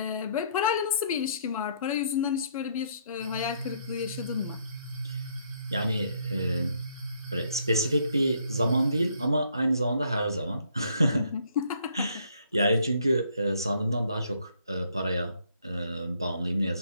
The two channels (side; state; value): both; inverted; correlation -0.67